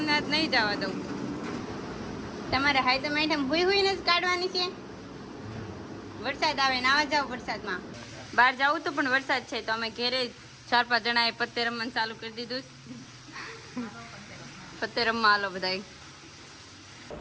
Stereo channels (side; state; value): both; identical; correlation 1.00